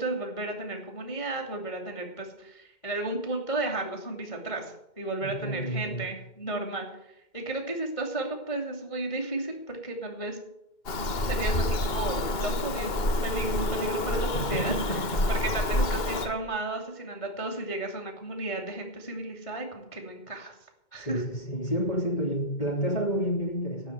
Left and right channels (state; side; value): late; right; 2.2 ms